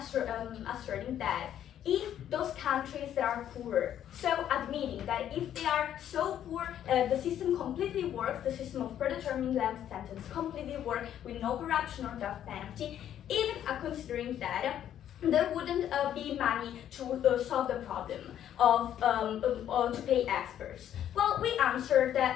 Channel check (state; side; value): quieter; right; 10.6 dB